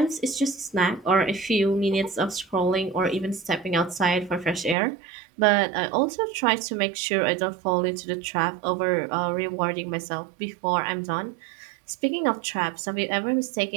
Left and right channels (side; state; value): left; drops out; at 4.8 s